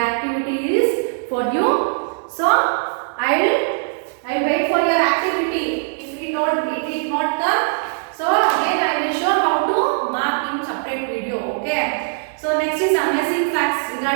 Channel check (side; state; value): left; silent; digital silence